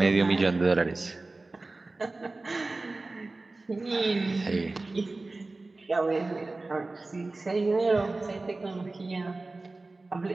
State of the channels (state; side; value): quieter; left; 3.3 dB